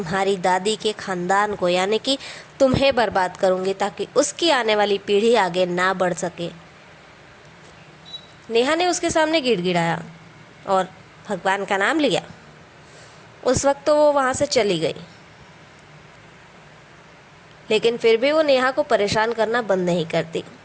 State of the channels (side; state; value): both; identical; correlation 1.00